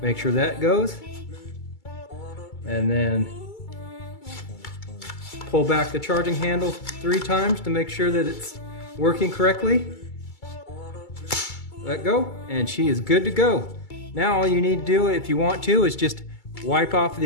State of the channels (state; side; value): late; right; 2.3 ms